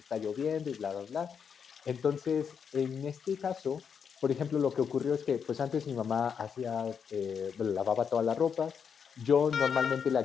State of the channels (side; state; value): right; quieter; 6.9 dB